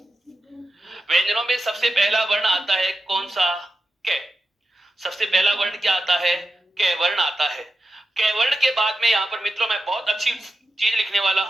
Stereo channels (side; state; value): both; normal; correlation 0.90